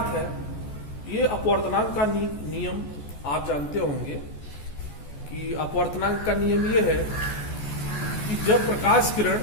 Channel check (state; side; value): late; right; 14 ms